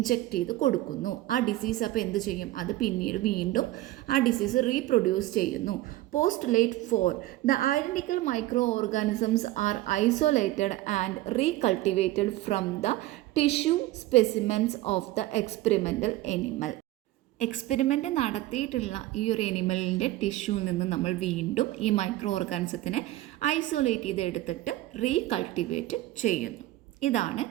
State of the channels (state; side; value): quieter; left; 16.5 dB